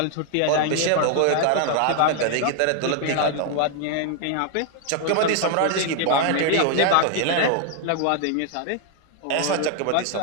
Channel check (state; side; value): different; both; correlation 0.00